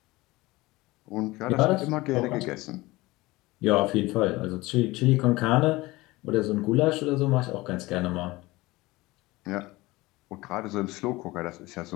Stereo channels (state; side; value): quieter; right; 20.6 dB